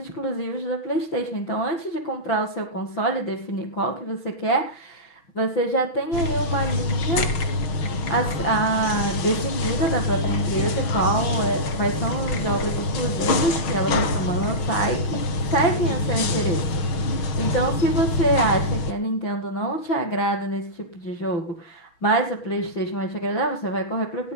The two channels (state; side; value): late; right; 6.1 ms